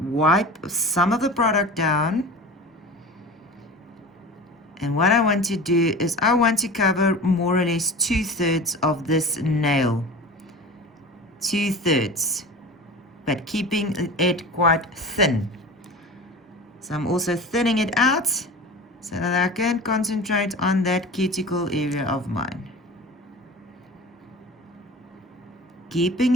some of the product down. And what I want to do is I want to cover more or less 2/3 of this nail. 2/3, but keeping it quite thin. So I'm also thinning it out so that I can concentrate on that cuticle area of mine. Keeping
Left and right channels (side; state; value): both; normal; correlation 0.35